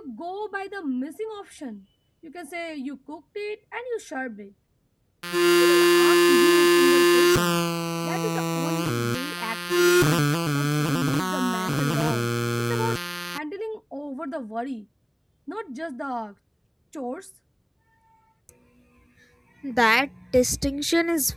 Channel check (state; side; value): identical; both; correlation 1.00